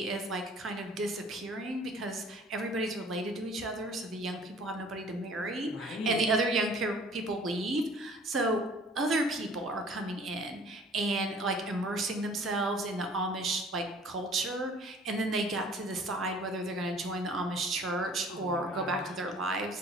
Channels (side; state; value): both; normal; correlation 0.51